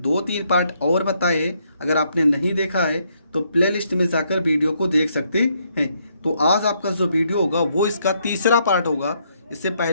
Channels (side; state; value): both; inverted; correlation -0.73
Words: 2-3 पार्ट और बताए, अगर आपने नहीं देखा है तो प्लेलिस्ट में जाकर वीडियो को देख सकते हैं। तो आज आपका जो वीडियो होगा वो इसका तीसरा पार्ट होगा। इससे